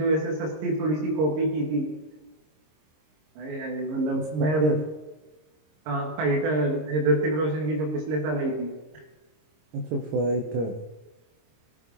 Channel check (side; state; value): left; late; 26 ms